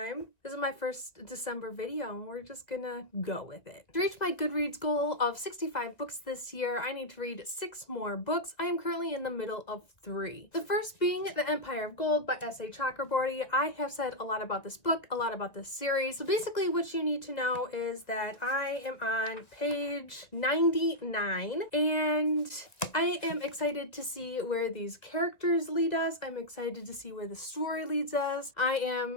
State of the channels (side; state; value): right; late; 1.7 ms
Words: This is my first December video and we're just gonna go with it. To reach my Goodreads goal of 65 books this year, I need to read 6 more books. I am currently in the middle of 3. The first being The Empire of Gold by S.A. Chakraborty. I have said a lot about this book, a lot about this series. So basically what you need to know is that I am on page 99 and I am excited to see where these characters lead us. I'm excited to see where the story leads us. I